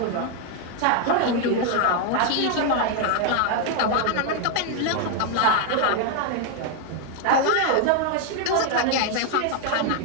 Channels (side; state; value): both; different; correlation 0.00